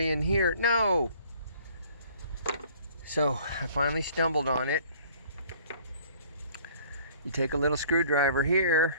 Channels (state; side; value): inverted; both; correlation -0.54